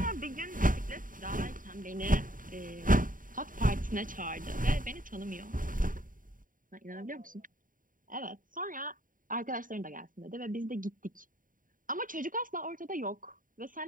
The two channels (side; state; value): left; late; 0.39 ms